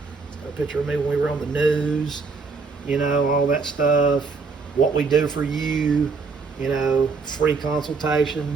It's got a picture of me when we were on the news, all that stuff, what we do for you, free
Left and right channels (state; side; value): quieter; left; 4.6 dB